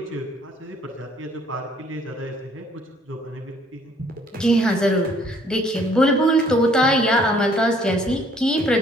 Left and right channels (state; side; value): normal; both; correlation 0.61